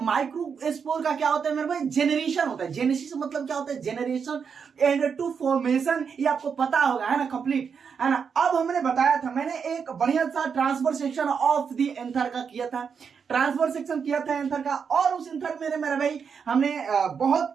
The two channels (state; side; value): quieter; left; 6.4 dB